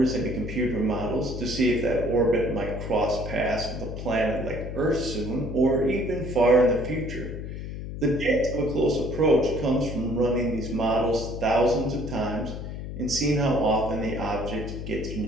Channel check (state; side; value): noise; left; hum, 7 dB below the sound